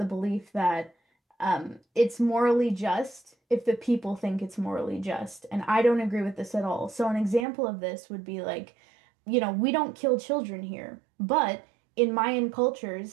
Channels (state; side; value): drops out; left; at 7.5 s